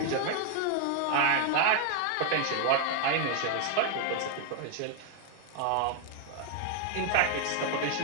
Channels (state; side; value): different; both; correlation 0.00